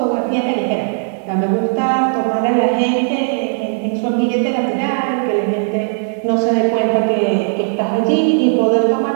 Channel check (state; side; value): silent; left; digital silence